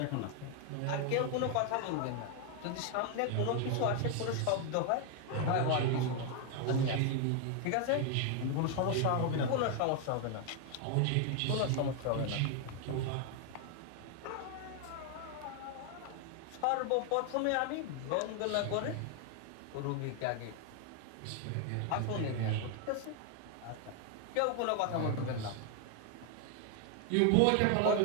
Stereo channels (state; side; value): different; both; correlation 0.00